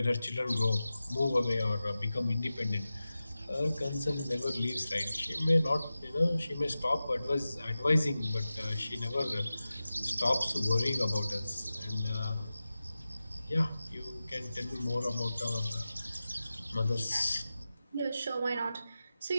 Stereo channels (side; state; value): both; inverted; correlation -0.94